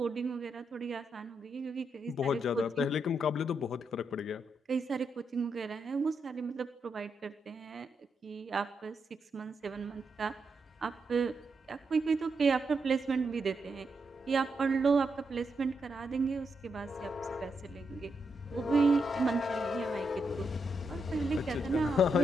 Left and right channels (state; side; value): normal; both; correlation 0.82